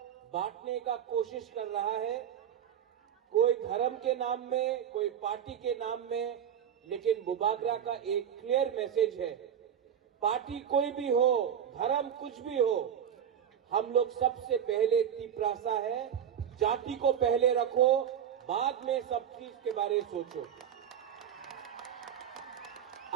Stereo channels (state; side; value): quieter; left; 8.9 dB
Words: बांटने का कोशिश कर रहा है, कोई धर्म के नाम में, कोई पार्टी के नाम में, लेकिन बुबागरा का एक क्लियर मैसेज है, पार्टी कोई भी हो, धर्म कुछ भी हो, हम लोग सबसे पहले तिप्रासा है, जाति को पहले रखो, बाद में सब चीज के बारे में सोचो।